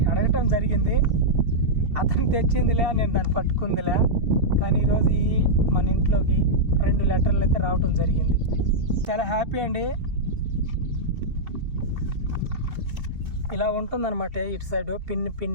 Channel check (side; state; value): left; late; 2.7 ms